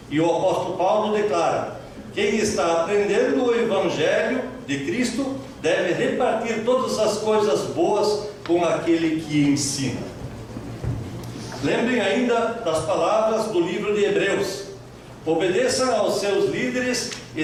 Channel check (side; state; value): both; identical; correlation 1.00